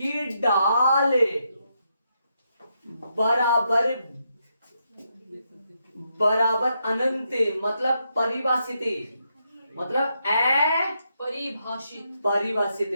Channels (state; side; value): inverted; both; correlation -0.81